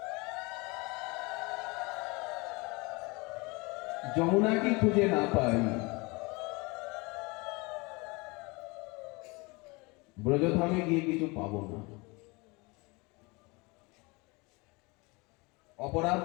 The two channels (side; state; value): right; quieter; 26.4 dB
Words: যমুনাকে খুঁজে না পাই, ব্রজধামে গিয়ে কিছু পাবো না। অপরাধ